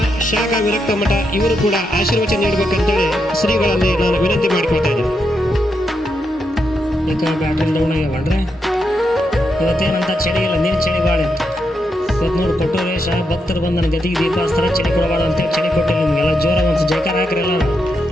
ಶಾಖಾ ವಿರಕ್ತ ಮಠ ಇವರು ಕೂಡ ಆಶೀರ್ವಚನ ನೀಡಬೇಕಂತೇಳಿ ಶ್ರೀಗಳಲ್ಲಿ ನಾನು ವಿನಂತಿ ಮಾಡಿಕೊಳ್ತಾ ಇದ್ದೀನಿ. ಈಗ ಬ್ಯಾಟ್ರಿ ಡೌನ್ ಆಗ್ಯಾವಲ್ರಿ, ಇವತ್ತೇನಂತ ಚಳಿ ಇಲ್ಲ, ನೀರು ಚಳಿ ಭಾಳ ಇತ್ತು. ಇವತ್ತು ನೋಡಿ ಕೊಟ್ಟೂರೇಶ ಭಕ್ತರು ಬಂದು ನನ್ನ ಗತಿಗೆ ದೀಪ ಹಚ್ತಾರೆ, ಚಳಿ ಕೊಡಬಾರ್ದು ಅಂತೇಳಿ ಚಳಿ ಕೊಟ್ಟಿಲ್ಲ. ನಿಮಗೆಲ್ಲ ಜೋರ ಒಂದು ಜಯಕಾರ ಹಾಕ್ರಲ್ಲ.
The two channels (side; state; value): both; normal; correlation 0.83